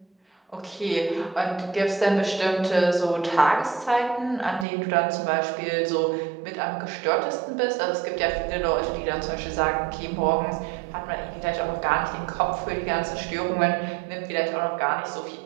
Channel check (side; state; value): left; drops out; at 4.7 s